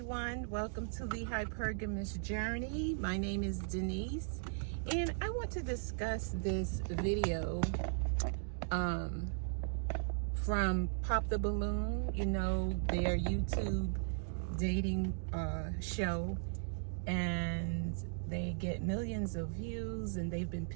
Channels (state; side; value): silent; left; digital silence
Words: welcome to the Hypergamous Journey. My name is Denise and I want to discuss this video from Pop the Balloon, their YouTube dating show, and they get millions of views and they've been